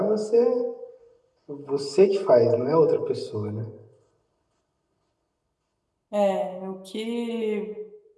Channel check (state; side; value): identical; both; correlation 1.00